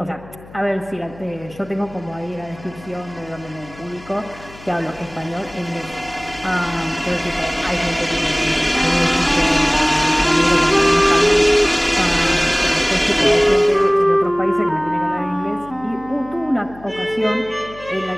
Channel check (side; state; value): left; noise; hum, 20 dB below the sound